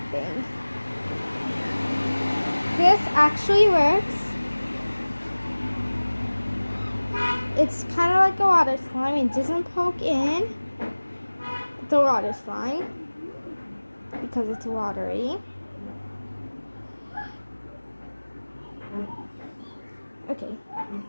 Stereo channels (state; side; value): inverted; both; correlation -1.00